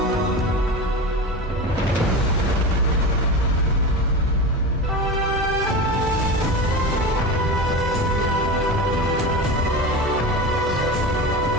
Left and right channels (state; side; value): normal; both; correlation 0.26